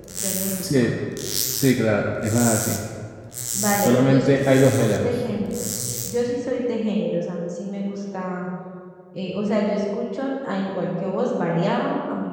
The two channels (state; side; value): identical; both; correlation 1.00